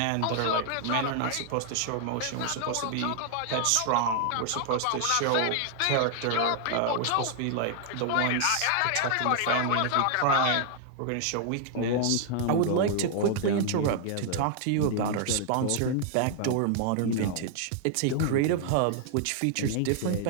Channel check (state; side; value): different; both; correlation 0.00